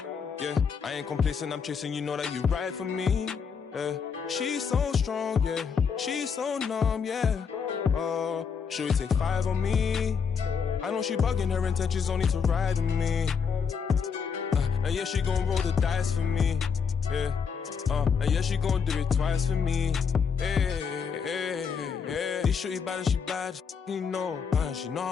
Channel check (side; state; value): right; quieter; 6.3 dB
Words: Yeah, I ain't complacent, I'm chasing, you know that you ride for me. Yeah, she's so strong, yeah, she's so numb, yeah. Oh, should we take 5 on me? I know she bugging, her intentions only to ride with me. And yeah, she gon' roll the dice for me. Yeah, and yeah, she gon' do it twice for me. These shorty bad and she bad, you know. She know